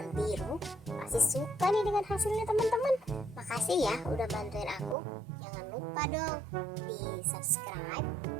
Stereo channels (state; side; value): drops out; left; at 5.0 s